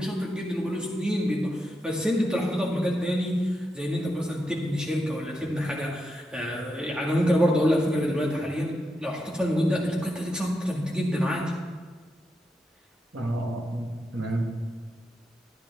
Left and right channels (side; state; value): both; normal; correlation 0.85